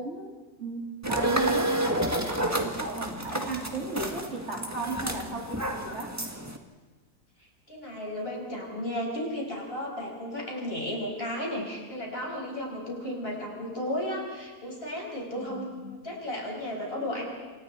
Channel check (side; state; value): both; normal; correlation -0.12